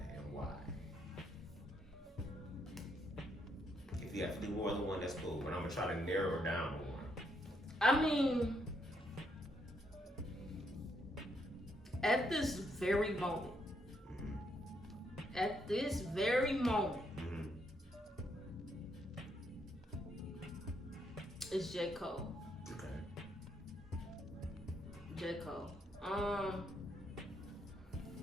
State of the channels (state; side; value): normal; both; correlation 0.75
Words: and why? If you have to do more than one, that's cool. But I'm gonna try to narrow it down to one. I mean, at this very moment, it's J. Cole. Okay. J. Cole.